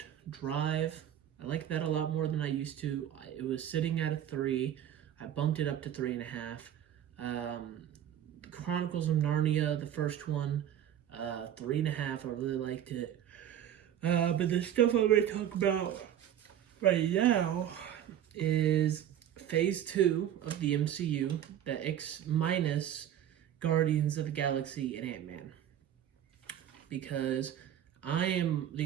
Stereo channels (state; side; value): quieter; left; 10.5 dB